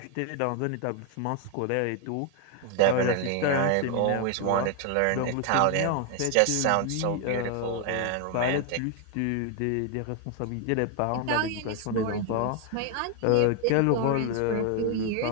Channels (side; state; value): both; different; correlation 0.01